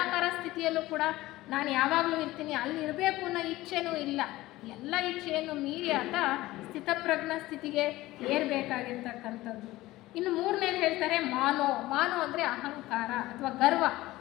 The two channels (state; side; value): quieter; right; 17.6 dB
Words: ಸ್ಥಿತಿಯಲ್ಲೂ ಕೂಡ ನಾನು ಯಾವಾಗಲೂ ಇರ್ತೀನಿ, ಅಲ್ಲಿ ಇರಬೇಕು ಅನ್ನೋ ಇಚ್ಛೆನೂ ಇಲ್ಲ. ಎಲ್ಲ ಇಚ್ಛೆಯನ್ನು ಮೀರಿ ಆತ ಸ್ಥಿತಪ್ರಜ್ಞ ಸ್ಥಿತಿಗೆ ಏರಬೇಕಾಗಿರ್ತಕ್ಕಂಥದ್ದು. ಇನ್ನು ಮೂರನೇದು ಹೇಳ್ತಾರೆ ಮಾನೋ. ಮಾನೋ ಅಂದರೆ ಅಹಂಕಾರ ಅಥವಾ ಗರ್ವ,